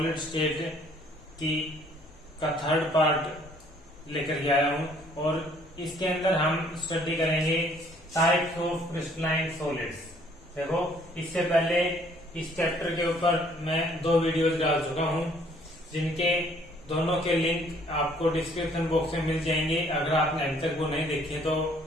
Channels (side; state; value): both; normal; correlation 0.61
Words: state का थर्ड पार्ट लेकर के आया हूं। और इसके अंदर हम स्टडी करेंगे टाइप्स ऑफ क्रिस्टलाइन सॉलिड्स। देखो, इससे पहले इस चैप्टर के ऊपर मैं 2 वीडियोस डाल चुका हूं, जिनके दोनों के लिंक आपको डिस्क्रिप्शन बॉक्स में मिल जाएंगे। अगर आपने अभी तक वो नहीं देखे तो